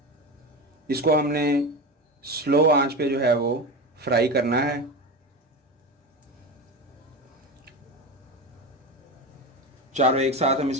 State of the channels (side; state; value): both; normal; correlation 0.23